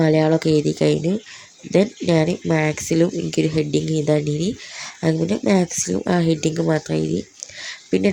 എഴുതി കഴിഞ്ഞു. ദെൻ ഞാൻ മാത്സിലും എനിക്കൊരു ഹെഡിങ് എഴുതാണ്ടിനി. അങ്ങനെ മാത്സിലും ആ ഹെഡിങ് മാത്രം എഴുതി. പിന്നെ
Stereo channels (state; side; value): identical; both; correlation 1.00